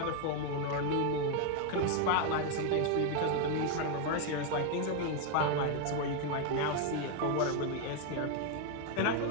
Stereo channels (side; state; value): both; different; correlation 0.01